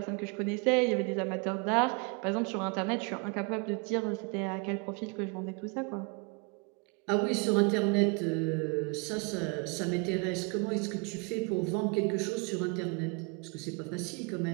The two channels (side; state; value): left; quieter; 32.5 dB